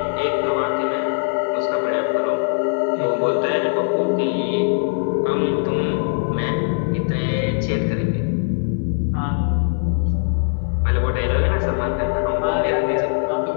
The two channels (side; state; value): right; silent; digital silence